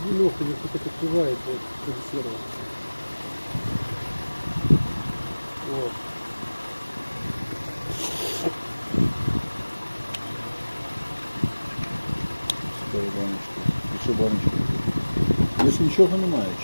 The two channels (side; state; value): both; inverted; correlation -1.00